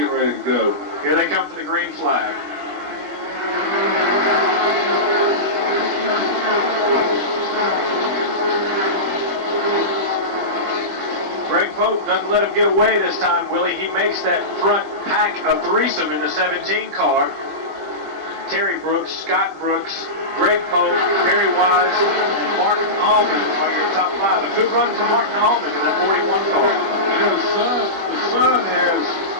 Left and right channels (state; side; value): late; left; 20 ms